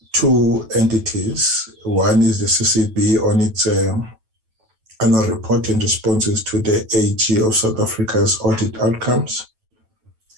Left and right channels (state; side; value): late; left; 9.1 ms